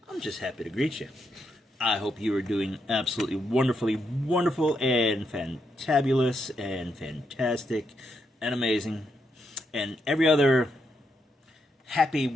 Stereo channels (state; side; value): normal; both; correlation 0.81